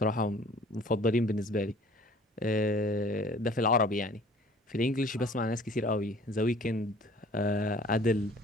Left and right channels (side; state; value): both; normal; correlation 0.51